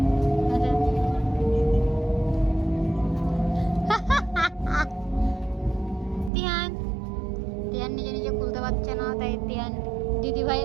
তিয়ান তিয়ান নিজে নিজে খুলতে পারছে না, তাই তিয়ান দিদি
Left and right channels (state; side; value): drops out; left; at 6.3 s